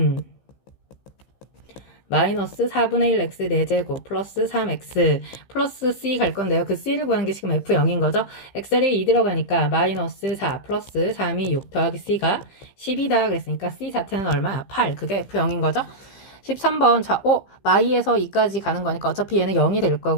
마이너스 4분의 1 x 4제곱 플러스 3x 플러스 c 갈 건데요. 그 c를 구하는 게 지금 f0인 거죠. x자리에 2 들어가니까 마이너스 4 플러스 3이 6 더하기 c가 10이다 그랬으니까 c 자체는 얼마? 8. 그게 f0인 거죠. 13번 자 마이에서 2까지 가는 거니까 어차피 얘는 0이 될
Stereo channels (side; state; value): right; late; 15 ms